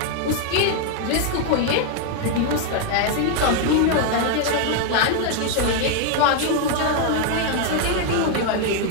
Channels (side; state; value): both; different; correlation 0.00